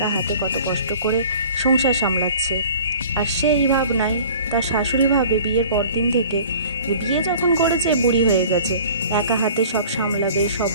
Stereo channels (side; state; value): both; inverted; correlation -0.45